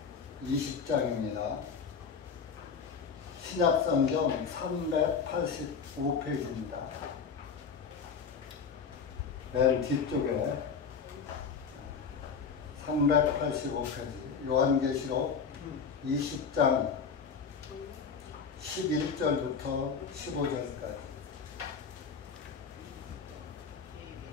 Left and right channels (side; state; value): right; quieter; 5.9 dB